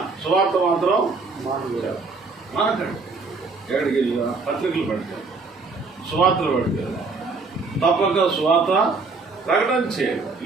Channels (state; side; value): quieter; left; 4.1 dB